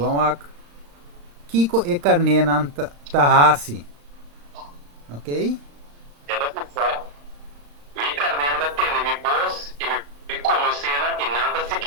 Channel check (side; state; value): left; late; 35 ms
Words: aqui. Kiko e carne nan tahasi. Ok? Ela pensa, me carne da tende me boss e me conhecendo e nada